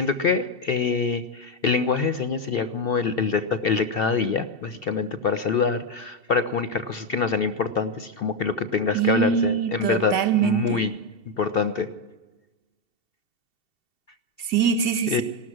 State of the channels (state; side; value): late; right; 2.7 ms